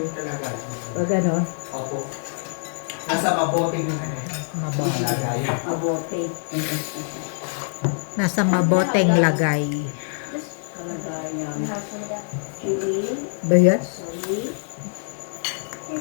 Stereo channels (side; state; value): right; silent; 62 dB below the other